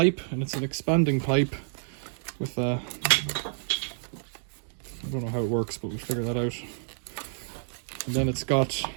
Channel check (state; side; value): silent; left; digital silence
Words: and it's an expanding pipe with a, I don't know how it works, but we'll figure that out. And then it's got